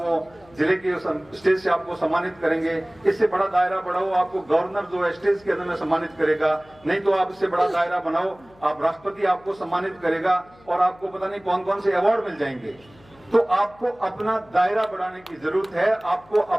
जिले के स्टेज से आपको सम्मानित करेंगे। इससे बड़ा दायरा बढ़ाओ, आपको गवर्नर जो है स्टेज के अंदर में सम्मानित करेगा। नहीं तो आप इससे बड़ा दायरा बनाओ, आप राष्ट्रपति आपको सम्मानित करेगा और आपको पता नहीं कौन कौन से अवार्ड मिल जाएंगे। तो आपको अपना दायरा बढ़ाने की जरूरत है। आपको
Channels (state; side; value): noise; left; hum, 28 dB below the sound